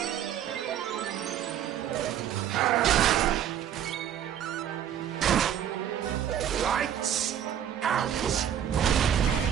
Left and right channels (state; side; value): quieter; left; 9.9 dB